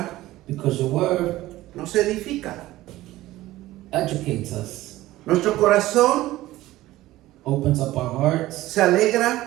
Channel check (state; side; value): quieter; left; 16.5 dB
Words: Because your word nos edifica. educates us, Nuestro corazón opens up our hearts, se